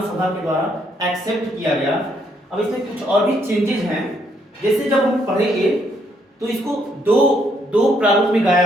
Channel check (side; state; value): both; normal; correlation 0.72